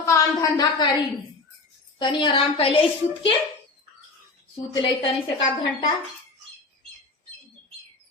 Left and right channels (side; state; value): right; quieter; 3.7 dB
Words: काम धंधा करी। तनी आराम कैले सूत ले तनी से का घंटा।